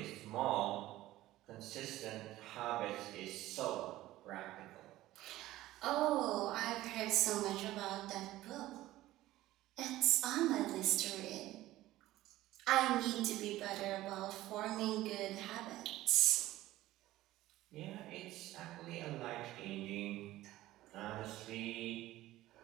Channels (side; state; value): left; quieter; 16.0 dB